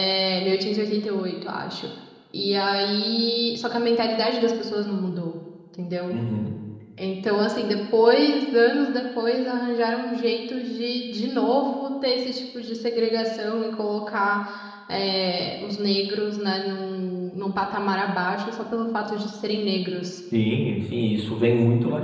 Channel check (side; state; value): both; identical; correlation 1.00